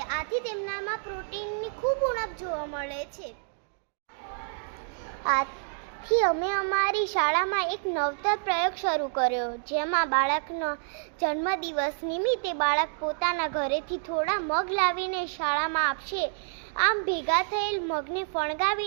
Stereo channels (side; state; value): left; silent; digital silence